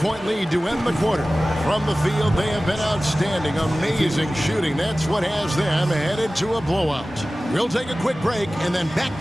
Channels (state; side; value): normal; both; correlation 0.97